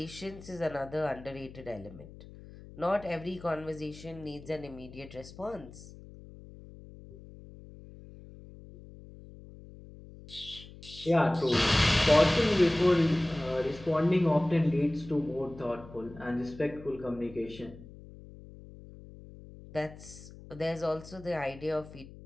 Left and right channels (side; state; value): left; noise; hum, 17 dB below the sound